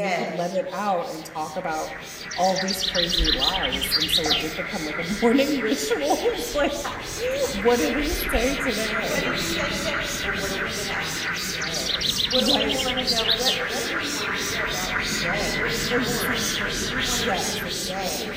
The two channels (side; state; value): both; identical; correlation 1.00